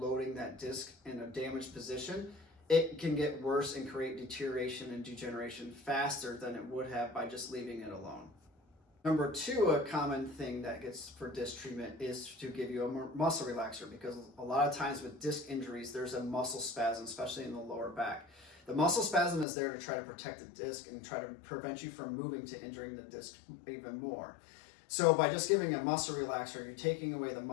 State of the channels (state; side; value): drops out; right; at 19.5 s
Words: that disc in a damaged position, it can get worse and create deterioration and degeneration faster than it would have by just leaving it alone. Number two, a common thing that gets for disc treatment is to give you a muscle relaxer, because a lot of times with disc injuries, there's a muscle spasm, especially in the lower back. The muscle spasm is there to try to protect the disc and try to prevent you from moving to injuring the disc even more. So by just giving a muscle relaxer, you're taking away the